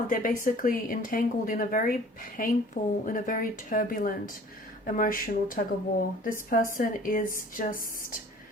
they're basically entangled in a very painful, in a very turbulent emotional tug of war. This person is just,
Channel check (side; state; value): both; normal; correlation 0.49